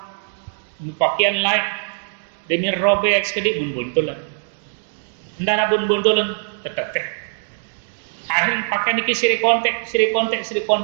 pakaian lain demi robek sekedik bun-buntulan ndana bun-buntulan teteh akhir pakaian iki siri kontek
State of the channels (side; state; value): left; silent; digital silence